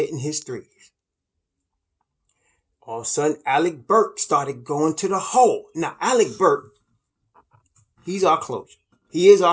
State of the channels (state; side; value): identical; both; correlation 1.00